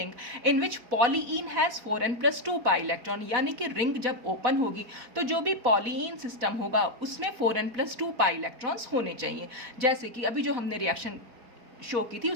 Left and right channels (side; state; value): left; late; 4.1 ms